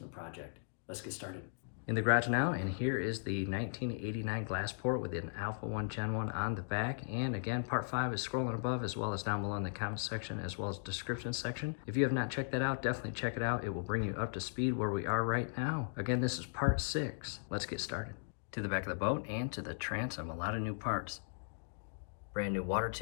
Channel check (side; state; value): right; silent; digital silence